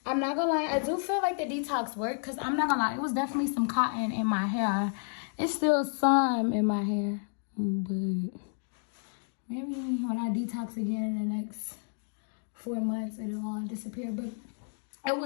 I'm not gonna lie, I do feel like the detox worked, because I'm not gonna lie, it was definitely some cotton in my hair. It's still some in my hair, but maybe when I detox again in the next 4 months, it'll all disappear. But it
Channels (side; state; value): right; silent; 57 dB below the other